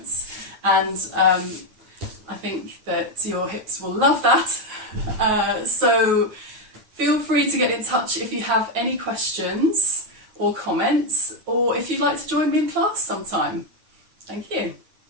And I think that your hips will love that. So feel free to get in touch if you have any questions or comments, or if you'd like to join me in class sometime. Thank you.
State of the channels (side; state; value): left; late; 9.4 ms